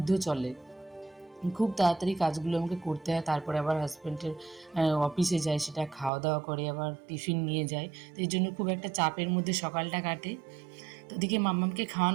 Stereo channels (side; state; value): left; drops out; at 6.1 s